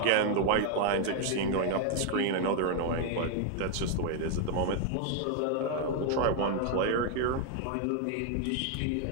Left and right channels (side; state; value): both; different; correlation 0.00